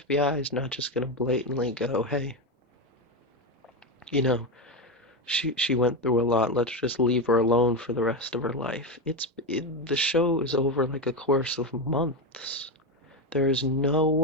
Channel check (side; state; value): both; normal; correlation 0.12